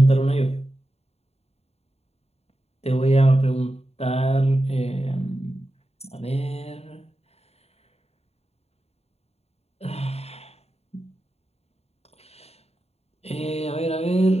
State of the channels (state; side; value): late; right; 0.30 ms